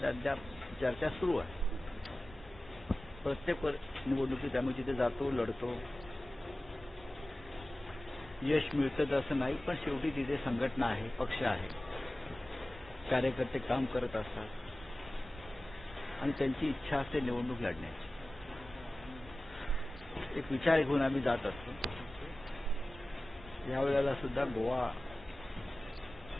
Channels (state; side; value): normal; both; correlation 0.96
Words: अद्याप चर्चा सुरू आहे. प्रत्येक निवडणुकीत आम्ही तिथे जातो, लढतो. यश मिळतं असं नाही, पण शेवटी तिथे संघटना आहे, पक्ष आहे, कार्यकर्ते काम करत असतात आणि त्यांची इच्छा असते निवडणूक लढण्याची. एक विचार घेऊन आम्ही जात असतो. यावेळेला सुद्धा गोवा